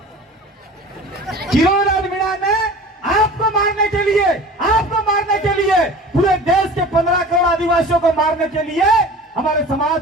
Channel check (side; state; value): both; normal; correlation 0.40